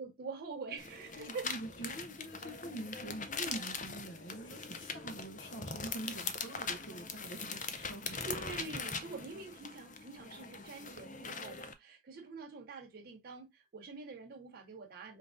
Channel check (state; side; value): normal; both; correlation 0.15